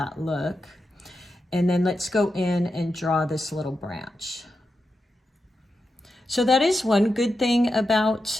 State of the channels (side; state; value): both; normal; correlation 0.89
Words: look. And then let's go in and draw this little branch. So that is one good thing about